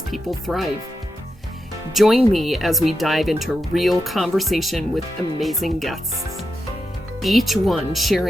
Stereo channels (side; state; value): both; normal; correlation 0.87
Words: people thrive. Join me as we dive into real conversation with amazing guests, each one